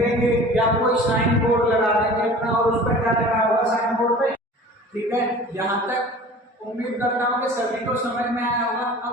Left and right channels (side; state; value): both; normal; correlation 0.42